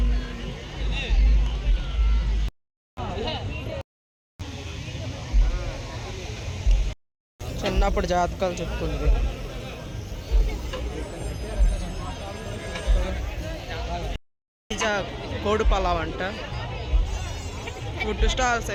చిన్నప్పుడు జాతకాలు చెప్పుకుంది. కోడి పలావ్ అంట. ఫుడ్ స్టాల్స్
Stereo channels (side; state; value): both; identical; correlation 1.00